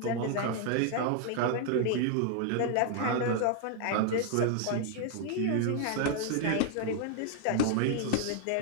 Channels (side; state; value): both; different; correlation 0.00